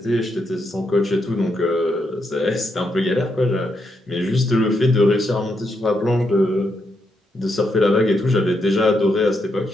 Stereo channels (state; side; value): normal; both; correlation 0.80